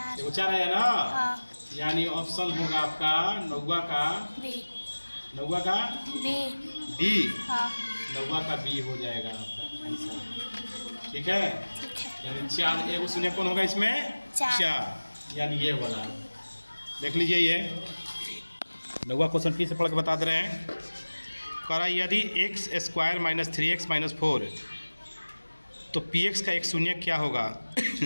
देखो 4 आया ना। हाँ। यानी ऑप्शन होगा आपका 9 का बी। 9 का बी। डी। हाँ। 9 का बी हो जाएगा आपका आंसर। ठीक है, ठीक है। यानी 4 एक शून्य कौन होगा इसमें? 4। यानी ये वाला देख लीजिए। ये 9वां क्वेश्चन फिर से पढ़ के बता दे रहे हैं। कह रहा है यदि x² - 3x - 4 तो px का एक शून्य क्या होगा?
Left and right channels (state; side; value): inverted; both; correlation -1.00